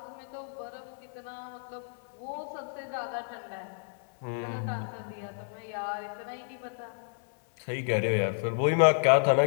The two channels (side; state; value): right; silent; digital silence